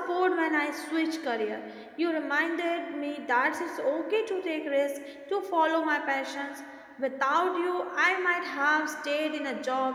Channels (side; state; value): both; identical; correlation 1.00